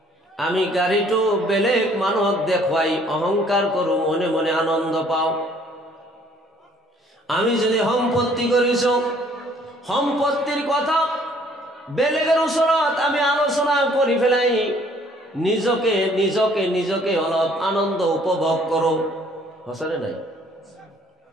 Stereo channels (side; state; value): both; normal; correlation 0.60